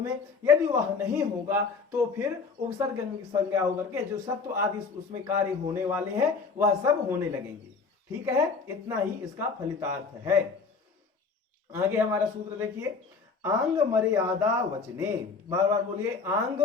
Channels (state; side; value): quieter; right; 4.8 dB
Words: यदि वह नहीं होगा तो फिर उपसर्ग संज्ञा होकर के जो सत्व आदि उसमें कार्य होने वाले हैं वह सब होने लगेंगे। ठीक है, इतना ही इसका फलितार्थ है। आगे हमारा सूत्र देखिए, आंग मर्यादा वचने, बार बार बोलिए, आंग